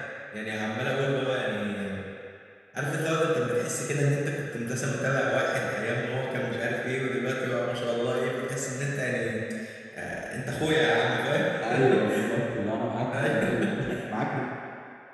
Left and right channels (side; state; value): both; identical; correlation 1.00